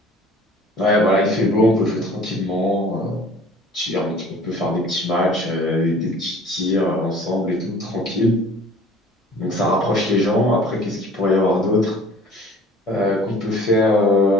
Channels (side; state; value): both; normal; correlation 0.49